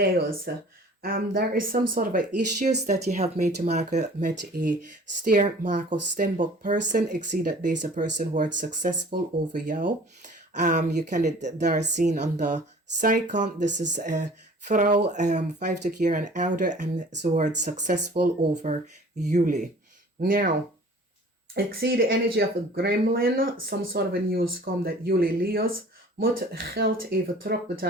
there is some sort of a issues that you have mee te maken met a steer, maak of stembok person. Ik zie dat deze person wordt successful over jou. You kan het daar zien aan de zijkant. This is a vrouw, 50 jaar en ouder, en ze wordt successful over jullie. Now, ik zie de energy of a gremlin. Some sort of a news komt dat jullie Leo's moet geld even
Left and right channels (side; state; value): both; normal; correlation 0.48